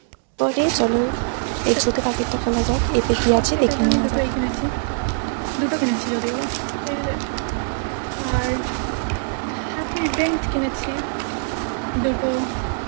পরে চলো এই ছোটো প্যাকেটটা খোলা যাক, এতে কী আছে দেখে নেওয়া যাক। দুটো কিনেছি যদিও, আর হ্যাপি ড্রিঙ্ক কিনেছি, দুটো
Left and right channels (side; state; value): left; silent; 64 dB below the other